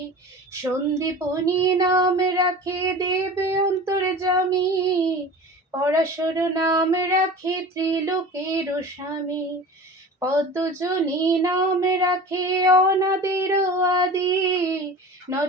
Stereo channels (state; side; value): normal; both; correlation 0.36